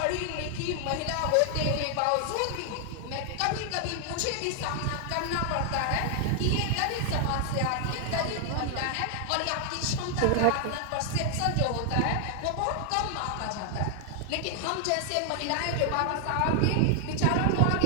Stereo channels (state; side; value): different; both; correlation 0.00